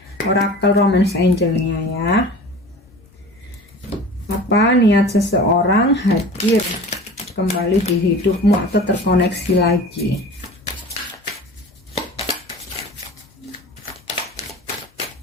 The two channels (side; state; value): both; normal; correlation 0.39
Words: Oracle Romance Angel-nya ya. Apa niat seseorang hadir kembali di hidupmu atau terkoneksi lagi?